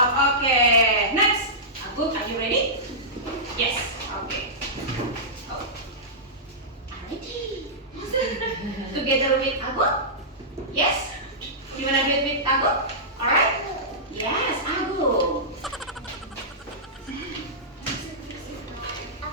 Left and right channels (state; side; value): normal; both; correlation -0.15